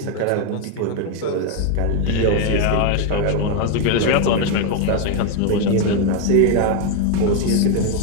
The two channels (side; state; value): both; different; correlation 0.01